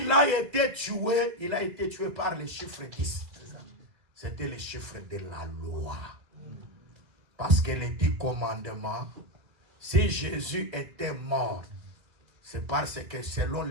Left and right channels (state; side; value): late; left; 2.0 ms